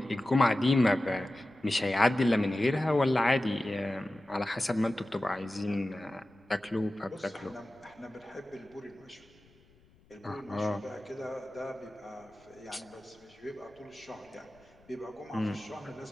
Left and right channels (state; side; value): noise; left; rumble, 29 dB below the sound